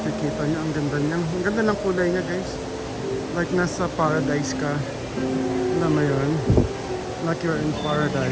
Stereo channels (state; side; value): identical; both; correlation 1.00